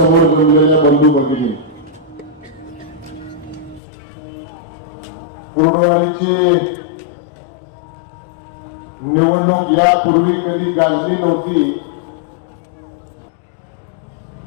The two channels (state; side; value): drops out; right; at 3.8 s